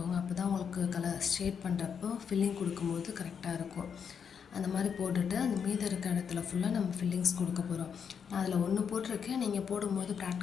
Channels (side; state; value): right; quieter; 7.0 dB